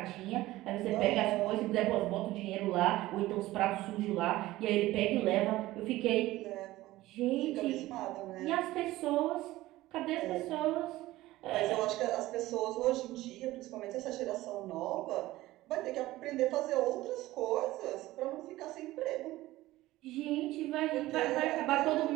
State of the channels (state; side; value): quieter; left; 17.1 dB